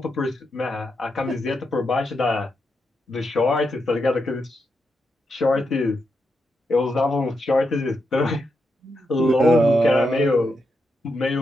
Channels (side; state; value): both; normal; correlation 0.84